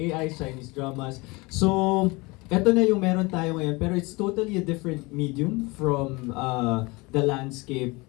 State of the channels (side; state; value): right; quieter; 24.9 dB